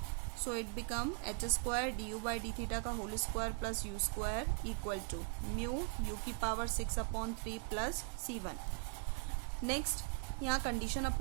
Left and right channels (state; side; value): quieter; left; 33.1 dB